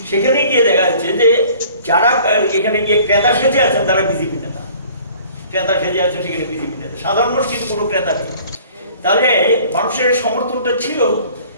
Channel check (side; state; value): both; inverted; correlation -0.51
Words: সেখানে গিয়ে দেখা যাচ্ছে যে যারা এখানে গিয়ে ক্রেতা সেজে আছেন তারা বিজেপি নেতা, ক্রেতা সেজে আছেন সেখানে বিজেপি নেতা, সাধারণ মানুষ কিন্তু কোনো ক্রেতা নেই। তাহলে মানুষের সমর্থনটা ছিল।